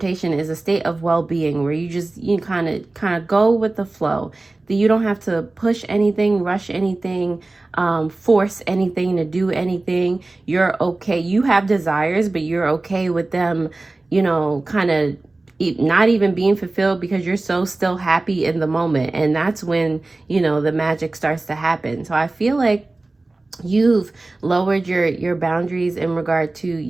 is a state of well-being where you kind of go with the flow. That you don't have to push anything, rush anything, force anything to do anything. You're okay. You have desires, but you're okay with them, you know, kind of not even being fulfilled, because you're so still happy in the moment. And that's when, you know, the magic starts to happen. So I feel like you've lowered your boundaries in regard to,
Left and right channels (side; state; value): left; quieter; 3.1 dB